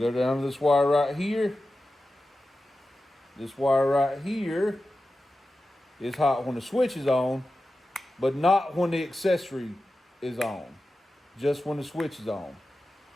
down to this wire right here. This wire right here is hot when the switch is on, but not when the accessory is on. Just when the switch is on.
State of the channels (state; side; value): normal; both; correlation 0.93